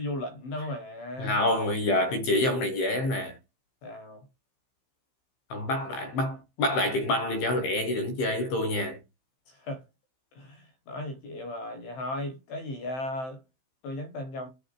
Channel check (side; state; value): right; late; 15 ms